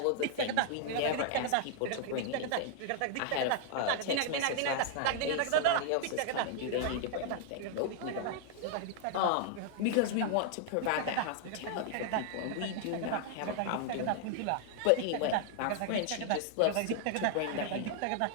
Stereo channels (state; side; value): different; both; correlation 0.00